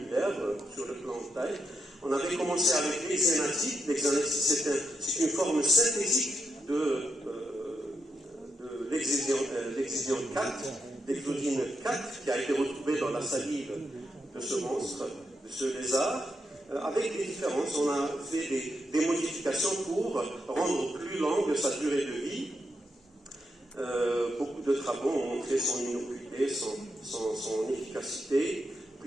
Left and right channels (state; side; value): normal; both; correlation 0.83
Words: sur le plan de taille. On avait commencé avec l'hexénatide. L'hexénatide, c'est une forme synthétique de l'exésion 4, l'exodyne 4, qui a été retrouvée dans la salive de ce monstre, de ce lézard. Avec des différences, on a fait des modifications pour rendre plus longue sa durée de vie. Beaucoup de travaux ont montré son innocuité, son efficacité.